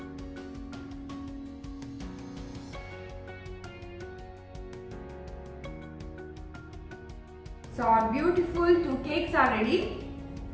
So our beautiful 2 cakes are ready.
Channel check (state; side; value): identical; both; correlation 1.00